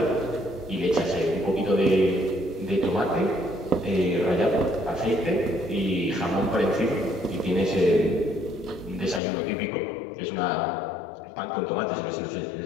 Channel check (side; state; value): right; drops out; at 9.2 s